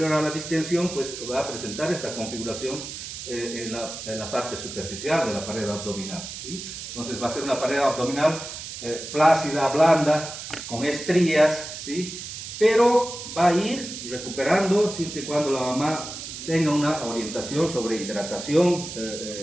a la distensión pues va a presentar esta configuración en la parte superficial de la pared abdominal, ¿sí? Entonces va a ser una pared abdominal flácida, blanda, con estrías, ¿sí? Pero va a ir recuperando siempre y cuando la mamá tenga una orientación sobre hidratación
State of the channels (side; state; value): right; noise; hiss, 9 dB below the sound